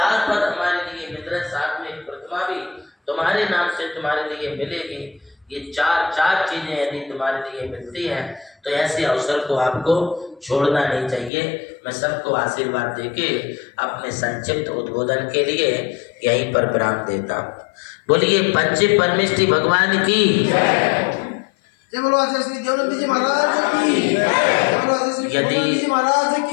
पद हमारे लिए मिल रहे, साथ में एक प्रतिमा भी तुम्हारे नाम से तुम्हारे लिए मिलेगी। ये 4 चीजें यदि तुम्हारे लिए मिलती हैं तो ऐसे अवसर को आपको छोड़ना नहीं चाहिए। मैं सबको आशीर्वाद देके अपने संक्षिप्त उद्बोधन के लिए यहीं पर विराम देता हूँ। बोलिए पंच परमेष्टि भगवान की जय बोलो आचार्य श्री देवनंद जी महाराज की, जय बोलो आचार्य श्री यदि महाराज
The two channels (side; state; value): right; drops out; at 11.3 s